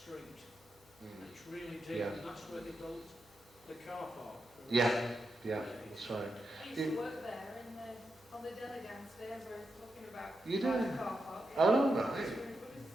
And it's really deep, Yeah. and that's where they built the car park. Yeah, that's right. I used to work there on the deli downstairs where we're talking about You the did? car park. Oh, right. It's really good to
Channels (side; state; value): both; normal; correlation 0.87